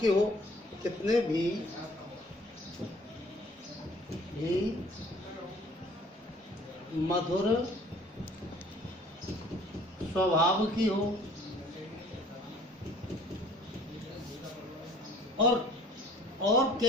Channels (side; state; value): both; normal; correlation 0.53